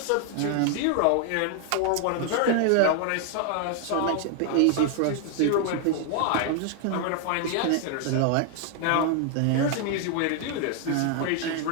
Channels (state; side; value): different; both; correlation 0.00